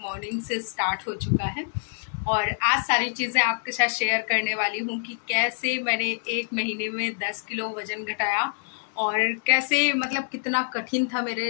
मॉर्निंग से स्टार्ट हो चुका है और आज सारी चीज़ें आपके साथ शेयर करने वाली हूँ कि कैसे मैंने 1 महीने में 10 किलो वज़न घटाया, और कैसे मतलब कितना कठिन था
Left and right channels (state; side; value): silent; right; 61 dB below the other